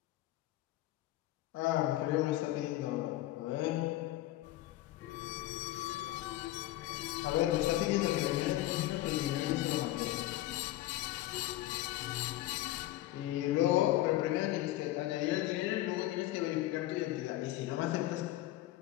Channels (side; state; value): right; quieter; 15.7 dB